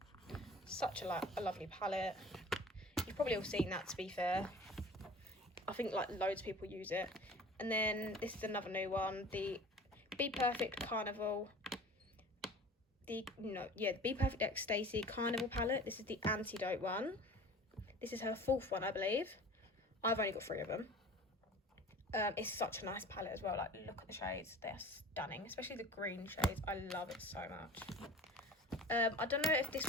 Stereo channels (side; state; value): both; normal; correlation 0.42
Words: Such a lovely palette. You've probably all seen that, to be fair. I think like loads of people use it. And then this is another new one, the Be Perfect Carnival. The Be Perfect X Stacey Carnival palette. This is the Antidote one. This is her 4th one, I believe. I've only got 3 of them. It's such a nice palette as well. Like, look at the shades. They're stunning, especially the green shades. I love it so much. I don't know if this